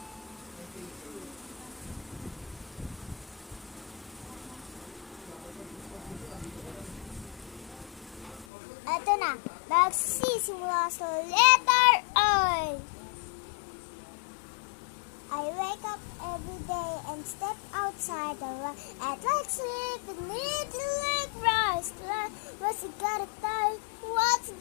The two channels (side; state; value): right; drops out; at 8.5 s